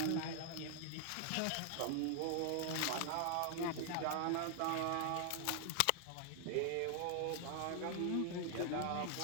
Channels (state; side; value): different; both; correlation 0.00